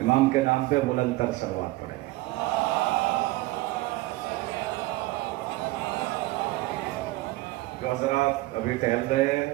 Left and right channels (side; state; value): left; quieter; 19.5 dB